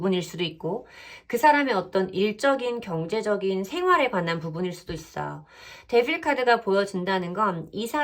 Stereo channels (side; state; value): both; identical; correlation 1.00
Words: 수도 있고 그 사람의 어떤 일적인 경제적인 생활에 관한 부분일 수도 있어요. 데빌 카드가 보여진다는 건 이